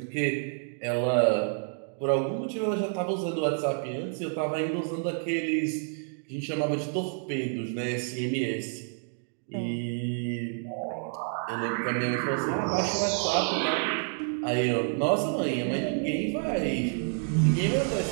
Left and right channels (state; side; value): silent; left; 59 dB below the other